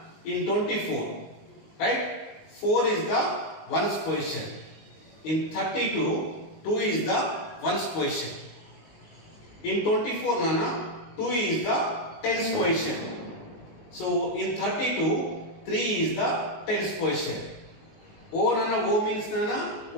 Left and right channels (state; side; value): late; right; 19 ms